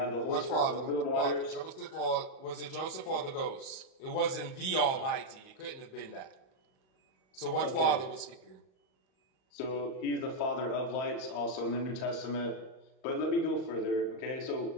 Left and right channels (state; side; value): late; right; 38 ms